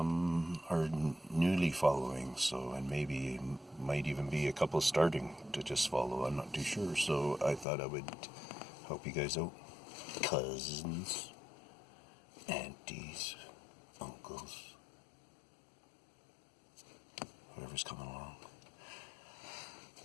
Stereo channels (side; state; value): right; drops out; at 7.7 s